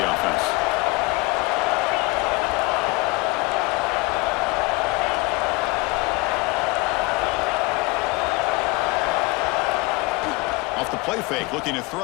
offense. Off the play fake, looking to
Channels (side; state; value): right; quieter; 24.3 dB